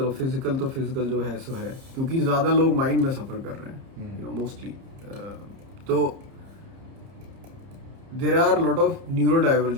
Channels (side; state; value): left; late; 30 ms